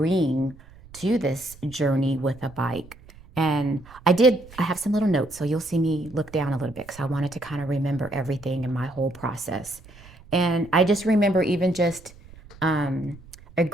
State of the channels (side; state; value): right; noise; rumble, 22 dB below the sound